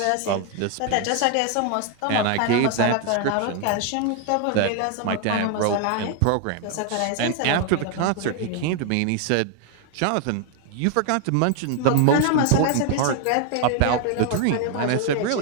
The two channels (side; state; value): both; different; correlation 0.00